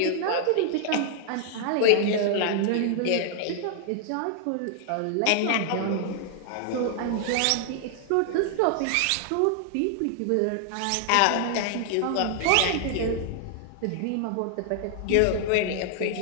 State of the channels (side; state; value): both; different; correlation 0.00